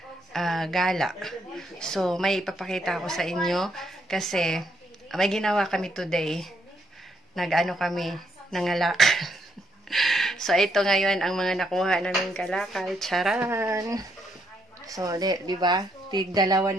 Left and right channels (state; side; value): normal; both; correlation 0.74